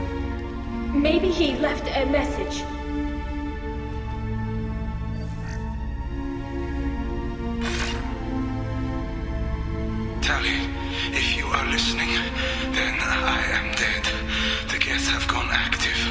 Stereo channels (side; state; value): both; identical; correlation 1.00